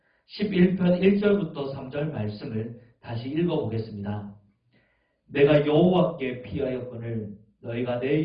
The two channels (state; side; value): identical; both; correlation 1.00